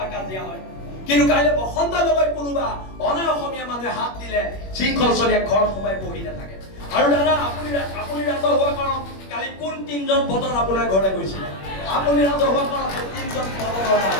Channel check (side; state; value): right; late; 21 ms